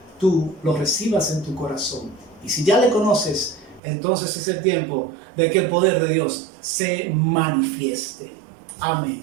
tú lo recibas en tu corazón. Y si ya le conoces, entonces es el tiempo de que el poder de Dios se manifieste.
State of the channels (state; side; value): drops out; left; at 3.8 s